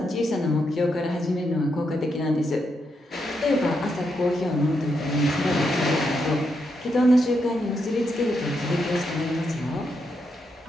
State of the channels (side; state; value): both; normal; correlation 0.81